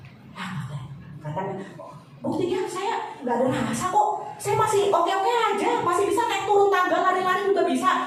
Katanya, buktinya saya nggak ada rasa kok, saya masih oke-oke aja, masih bisa naik turun tangga, lari-lari juga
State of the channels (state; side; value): identical; both; correlation 1.00